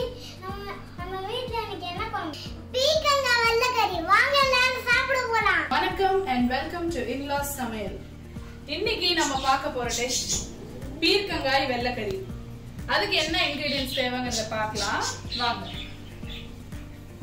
வணக்கம் and welcome to In-Laws சமையல். இன்னைக்கு நம்ம பார்க்க போற டிஷ் பீர்க்கங்காய் வெள்ளைக்கறி. அதுக்கு என்ன இன்கிரிடியன்ட்ஸ் தேவைங்கறத பார்க்கலாம் வாங்க.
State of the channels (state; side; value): identical; both; correlation 1.00